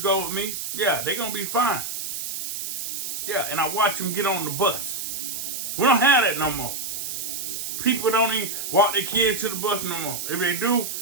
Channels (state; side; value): noise; right; hiss, 4 dB below the sound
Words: go with me. Yeah, they're going to be fine. Yeah, and I watch them get on the bus. We don't have that no more. People don't even walk their kids to the bus no more. If they do,